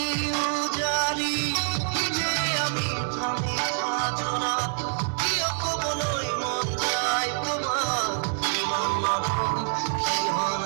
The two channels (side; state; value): left; silent; 60 dB below the other